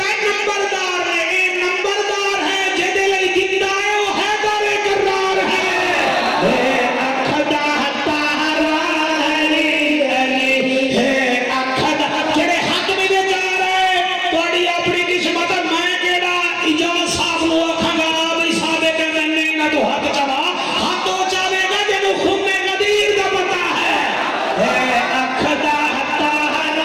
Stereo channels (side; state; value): both; identical; correlation 1.00